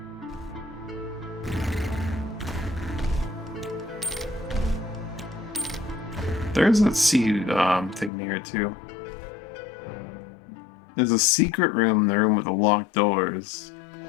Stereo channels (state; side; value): drops out; right; at 8.1 s